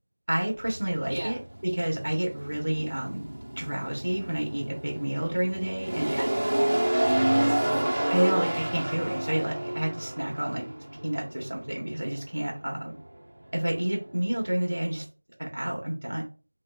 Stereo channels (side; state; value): both; inverted; correlation -1.00